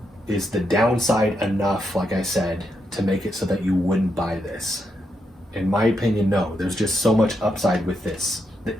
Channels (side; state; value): both; normal; correlation 0.82